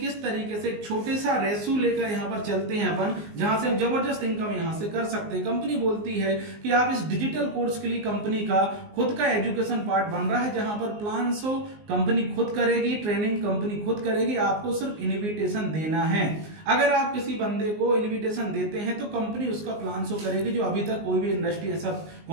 तरीके से छोटे सा रेशो लेकर यहाँ पर चलते हैं अपन, जहां से हम जबरदस्त इनकम यहाँ से कर सकते हैं। कंपनी बोलती है कि आप इस डिजिटल कोर्स के लिए कंपनी का खुद का एजुकेशन पार्ट बन रहा है, जहां पर प्लान शो कंपनी खुद करेगी, ट्रेनिंग कंपनी खुद करेगी, आपको सिर्फ इन्विटेशन देना है। अगर आप किसी बंदे को इन्विटेशन देते हैं तो कंपनी उसका प्लान शो करेगी, जो अभी तक कोई भी इंडस्ट्री ऐसा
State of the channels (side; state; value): left; late; 19 ms